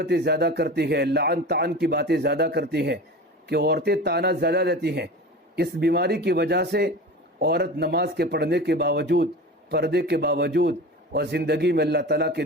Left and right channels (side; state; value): both; normal; correlation 0.32